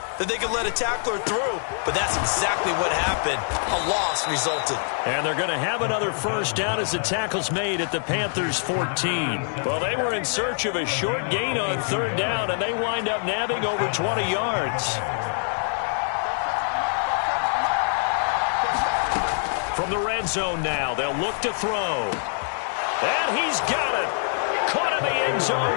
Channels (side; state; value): right; silent; digital silence